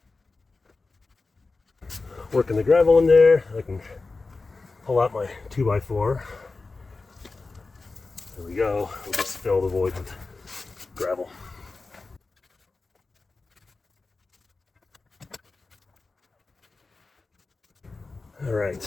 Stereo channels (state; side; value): quieter; right; 3.8 dB